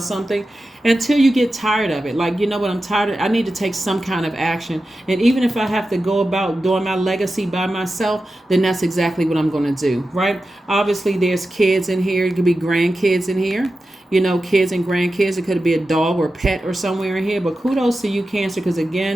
something until you get tired of it. Like, I'm tired of it. I need to take some kind of action. And even if I have to go about doing my legacy by myself, then that's exactly what I'm going to do, right? Obviously, there's kids in here. It could be grandkids in here. Kids and grandkids. It could be a dog or pet or somewhere in here. But kudos to you, Cancer, because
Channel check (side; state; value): both; normal; correlation 0.92